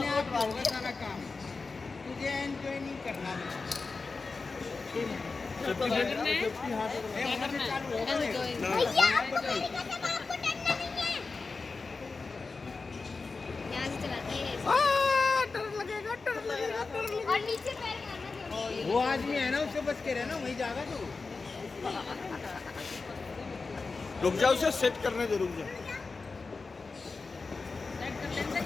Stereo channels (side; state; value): right; quieter; 4.2 dB